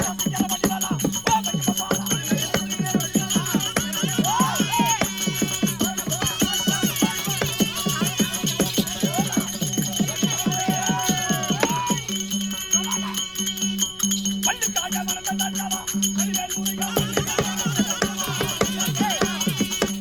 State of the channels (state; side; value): noise; left; rumble, 20 dB below the sound